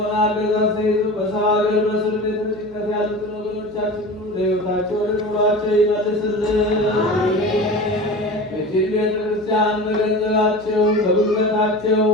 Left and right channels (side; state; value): right; noise; hum, 21 dB below the sound